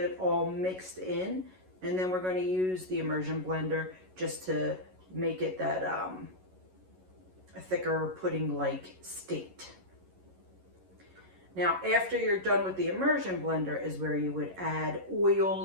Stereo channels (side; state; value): left; late; 11 ms